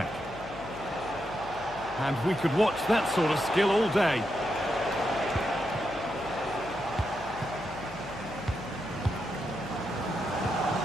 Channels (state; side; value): noise; left; hum, 16 dB below the sound